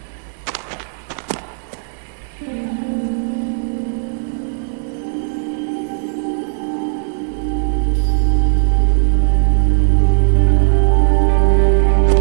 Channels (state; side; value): silent; left; digital silence